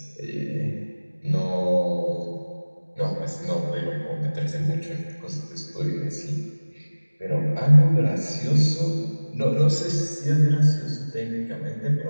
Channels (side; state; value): both; inverted; correlation -1.00